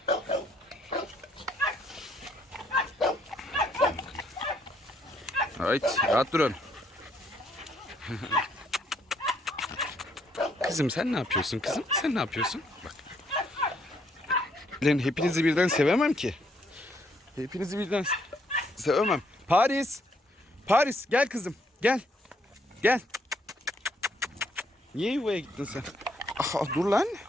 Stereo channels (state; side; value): normal; both; correlation 0.69